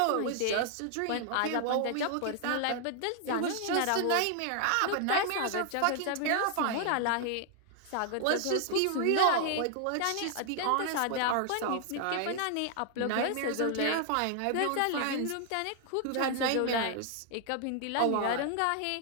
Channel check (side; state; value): both; different; correlation 0.00